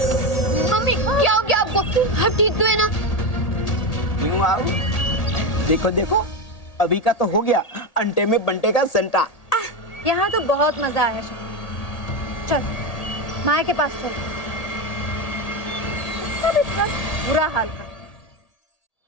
मम्मी क्या हो गया आपको? आप ठीक तो है ना? क्यों आओ? देखो देखो, अभी का तो हो गया अंडे में बंटे का संटा। यहाँ तो बहुत मजा आया शकू। चल माया के पास चल, उसका भी इतना बुरा हाल कर।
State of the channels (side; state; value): right; late; 1.8 ms